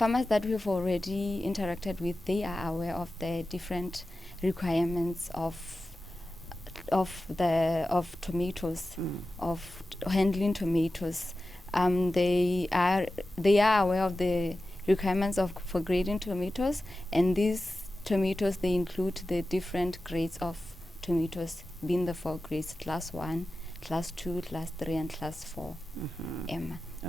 we've already interacted with, they are aware of the different requirements of of tomatoes, of handling tomatoes. They are aware of the requirements for grading tomatoes, and these tomatoes, they include the different grades of tomatoes, being the 4 grades: class 1, class 2, class 3, and class 4.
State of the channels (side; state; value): both; normal; correlation 0.94